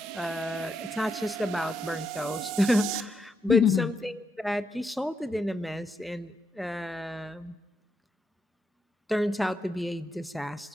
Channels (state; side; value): normal; both; correlation 0.80